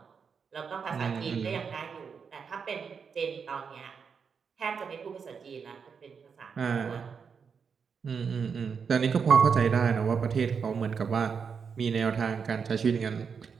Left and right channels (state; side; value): quieter; left; 6.1 dB